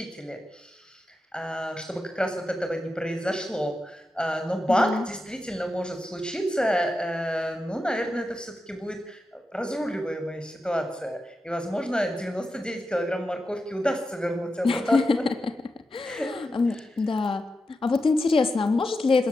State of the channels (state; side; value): normal; both; correlation 0.89